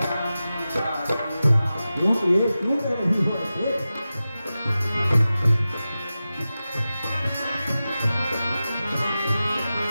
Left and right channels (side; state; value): both; inverted; correlation -0.94